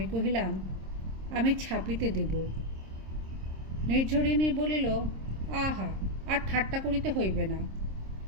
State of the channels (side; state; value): left; late; 26 ms